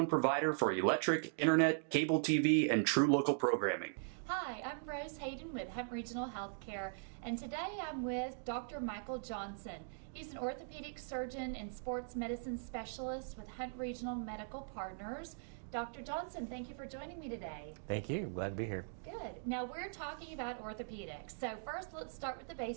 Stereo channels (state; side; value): silent; left; digital silence